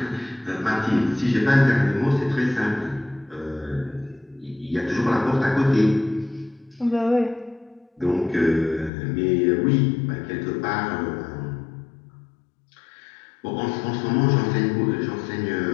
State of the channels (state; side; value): drops out; right; at 8.9 s